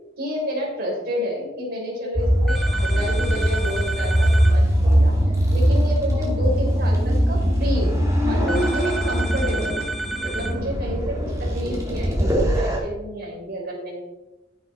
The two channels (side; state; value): both; normal; correlation 0.83